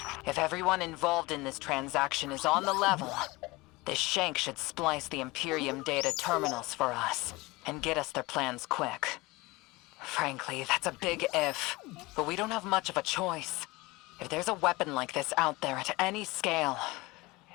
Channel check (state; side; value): quieter; right; 22.4 dB